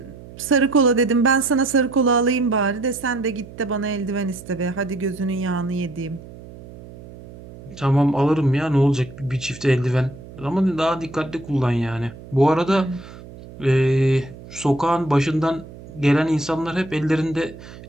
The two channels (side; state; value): right; noise; hum, 17 dB below the sound